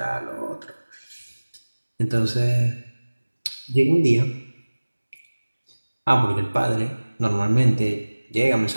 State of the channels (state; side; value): inverted; both; correlation -1.00